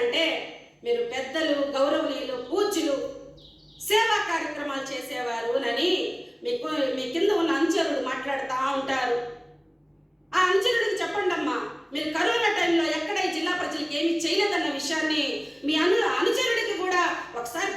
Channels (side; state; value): both; identical; correlation 1.00